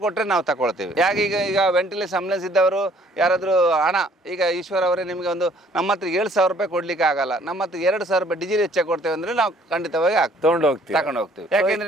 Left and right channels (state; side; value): normal; both; correlation 0.59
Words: ಕೊಟ್ಟರೆ ನಾವು ತಗೊಳ್ತೇವೆ. ಯಾಕೆ ಈಗ ವೆಂಟಿಲೇಷನ್ ಆಂಬುಲೆನ್ಸ್ ಇದ್ದವರು ಯಾರಾದರೂ ಹಣ, ಈಗ ಈಶ್ವರ್ ಅವರೇ ನಿಮಗೆ ಒಂದು ನಮ್ಮ ಹತ್ರ 7,000 ರೂಪಾಯಿ ಕೊಡ್ಲಿಕ್ಕೆ ಆಗಲ್ಲ, ನಮ್ಮ ಹತ್ರ 2,000 ರೂಪಾಯಿ ಡೀಸೆಲ್ ಹೆಚ್ಚಾಗಿ ಕೊಡ್ತೇವೆ ಅಂದ್ರೆ ನಾವು ಖಂಡಿತವಾಗಿ ತಗೊಂಡು ಹೋಗ್ತೀವಿ.